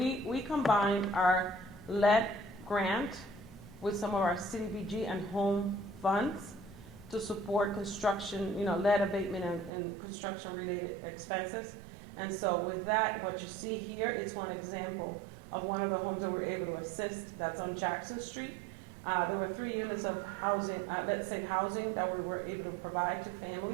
combined our lead grant with some of our CDBG and home funds to support construction, lead abatement and construction related expenses. And so with that, what you see here, it's one example of one of the homes that we're able to assist that's on Jackson Street. There were 3 units of housing, let's say housing, that we were able to provide to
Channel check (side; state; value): left; drops out; at 9.7 s